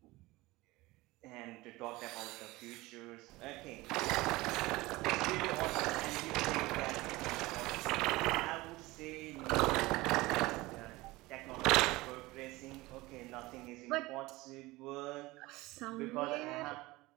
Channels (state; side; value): quieter; left; 20.5 dB